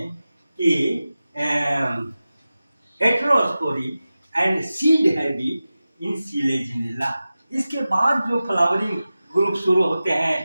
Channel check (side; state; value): both; inverted; correlation -0.95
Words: कि heterospory and seed habit in Selaginella. इसके बाद जो फ्लावरिंग ग्रुप शुरू होते